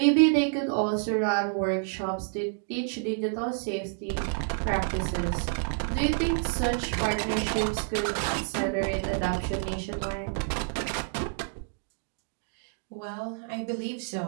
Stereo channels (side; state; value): left; silent; digital silence